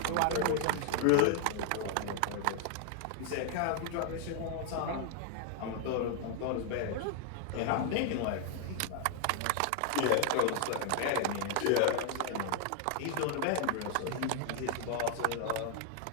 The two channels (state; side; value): different; both; correlation 0.00